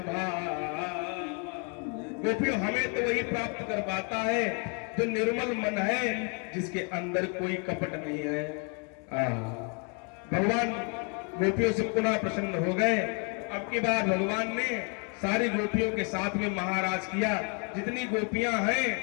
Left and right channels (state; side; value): quieter; right; 37.1 dB